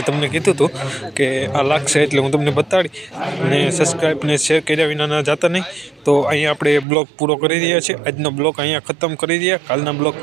તમને કીધું હતું કે આ લાગશે એટલે હું તમને બતાડી અને સબસ્ક્રાઈબ ને શેર કર્યા વિના ના જતા નહીં તો અહીંયા આપણે બ્લોગ પૂરો કરી રહ્યા છીએ આજનો બ્લોગ અહીંયા ખતમ કરી રહ્યા કાલના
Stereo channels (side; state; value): left; drops out; at 6.9 s